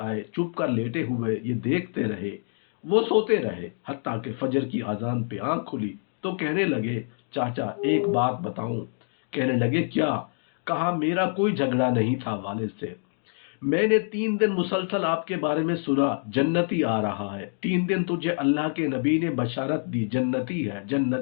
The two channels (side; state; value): right; silent; 61 dB below the other